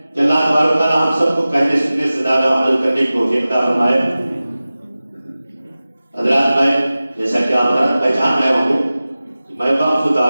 کہ اللہ تبارک تعالیٰ ہم سب کو کہنے سننے سے زیادہ عمل کرنے کی توفیق عطا فرمائے۔ حضرات، میں جیسا کہ آپ حضرات پہچان رہے ہوں گے کہ میں وقف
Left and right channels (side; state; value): both; inverted; correlation -0.96